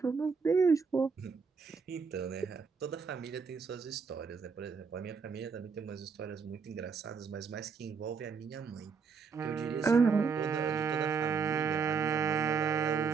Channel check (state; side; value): quieter; left; 5.5 dB